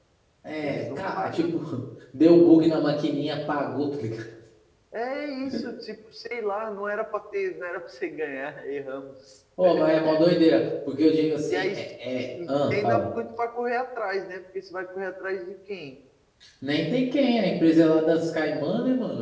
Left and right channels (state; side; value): identical; both; correlation 1.00